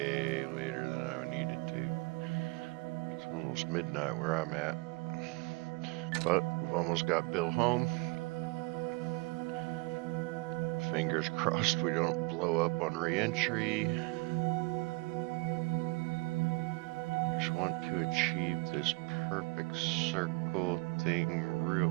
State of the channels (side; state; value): left; quieter; 27.7 dB